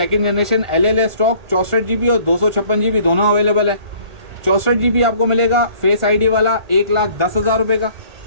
generation LLA stock 64 GB और 256 GB दोनों अवेलेबल है। 64 GB आपको मिलेगा फेस आईडी वाला 1,10,000 रुपये का,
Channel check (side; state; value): left; late; 1.4 ms